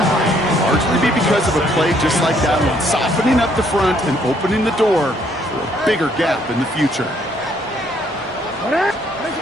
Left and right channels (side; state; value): both; normal; correlation 0.67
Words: largely be because of a play just like that one, softening up the front and opening the door for a bigger gap in the future.